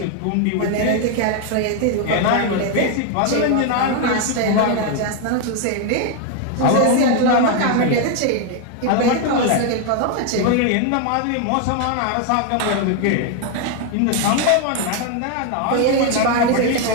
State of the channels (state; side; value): different; both; correlation 0.01